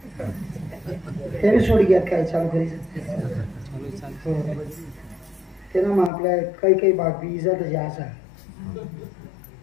ते सोड घ्या काय चालू करायचं ते ना मग आपल्या काही काही बाग बी इजात जे असा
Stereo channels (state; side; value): drops out; right; at 6.1 s